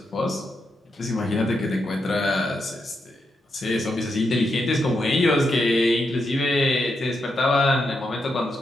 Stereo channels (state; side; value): normal; both; correlation 0.83